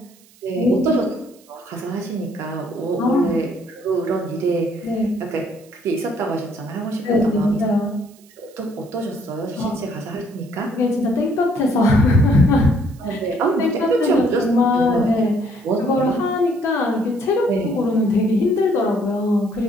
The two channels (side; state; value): right; noise; hiss, 28 dB below the sound